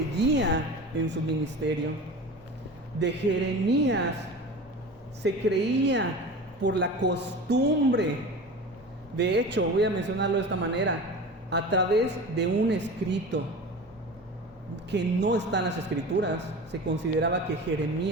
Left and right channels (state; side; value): normal; both; correlation 0.33